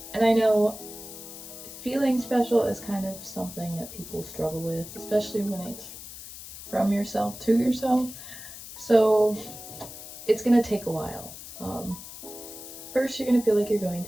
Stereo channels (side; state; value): left; noise; hiss, 13 dB below the sound